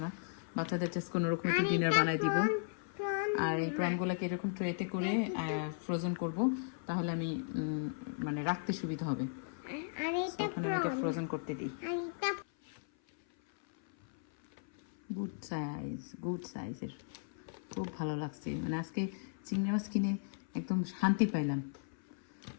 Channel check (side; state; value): right; silent; 54 dB below the other